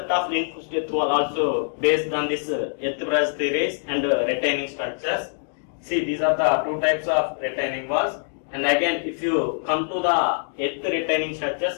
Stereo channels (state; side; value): silent; right; digital silence